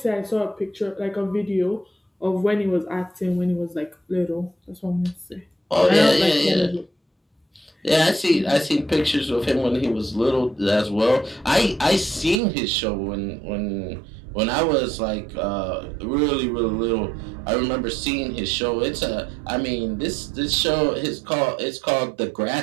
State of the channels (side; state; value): left; drops out; at 12.4 s